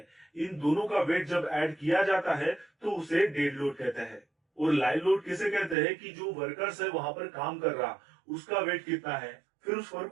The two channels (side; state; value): left; drops out; at 5.8 s